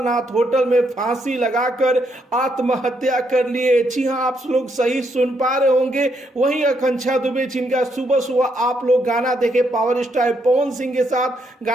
होटल में फांसी लगाकर आत्महत्या कर लिए। जी हाँ, आप लोग सही सुन पा रहे होंगे। वहीं आकांक्षा दुबे जिनका सुबह सुबह आप लोग गाना देखे पावर स्टार पवन सिंह के साथ,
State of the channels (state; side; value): normal; both; correlation 0.76